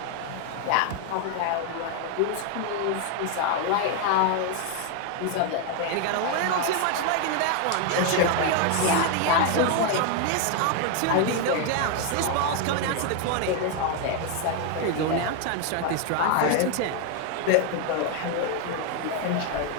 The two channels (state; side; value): different; both; correlation 0.01